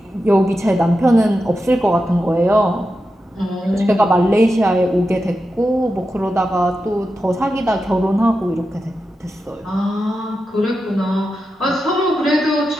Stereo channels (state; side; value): normal; both; correlation 0.90